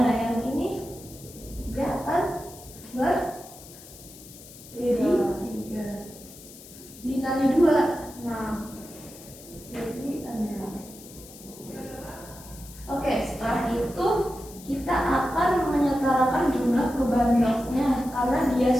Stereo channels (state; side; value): noise; left; hiss, 18 dB below the sound